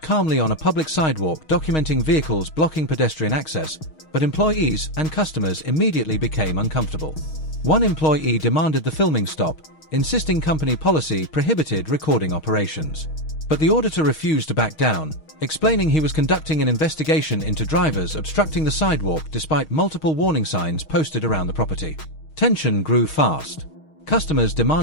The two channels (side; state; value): right; late; 6.4 ms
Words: on a public sidewalk documenting vehicles blocking pedestrian access, but employees and customers immediately became uncomfortable. One employee demanded the filming stop, insisting company policy prohibited recording operations. But the auditor refused to back down, explaining he was conducting an investigation into drivers obstructing the sidewalk despite multiple warning signs posted around the property. Tension grew fast. Customers